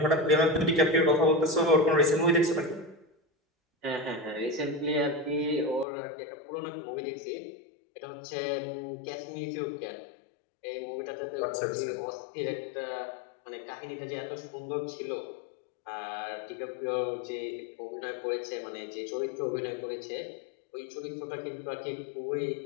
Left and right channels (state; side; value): drops out; right; at 5.9 s